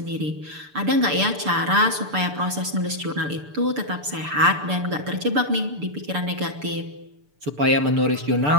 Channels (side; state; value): left; late; 6.8 ms